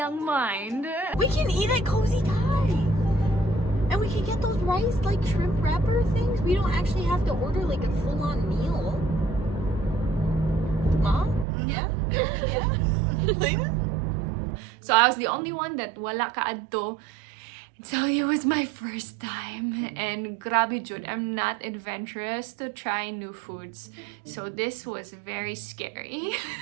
mind, We can eat at Cozy Thai. And we can get those rice, like, shrimp wrapper things. We don't actually have to order, like, a full-on meal. Mom? Yeah? Yeah? so I was the only one that wala kaadto. So it was my first time, and grabe jud, I'm not adventurous to try new foods. So this was very scary.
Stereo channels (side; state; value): left; drops out; at 11.5 s